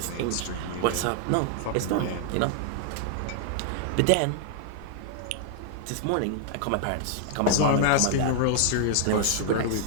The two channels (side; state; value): both; different; correlation 0.00